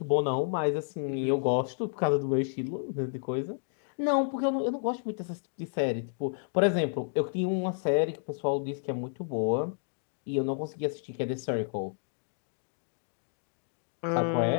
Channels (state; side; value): silent; right; digital silence